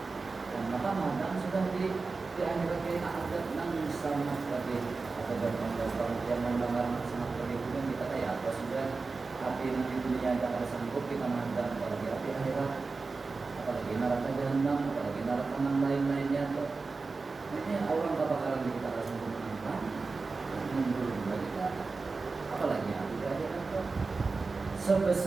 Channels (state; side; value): quieter; left; 4.1 dB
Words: Dan maka madang sudah di akhirat kita ada nang sama tadi atau bertambah yang mendengar sangat berikutnya kita kayak apa sudah api di dunia tidak ada sanggup kita mandang apalagi api akhirat apalagi neraka jahanam apalagi neraka yang lain-lainnya tuh ini orang kebakaran kita harus menangkan mundur kita apalagi api di akhirat tuh